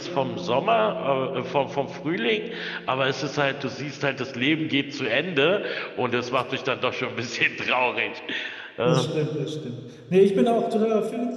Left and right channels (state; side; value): identical; both; correlation 1.00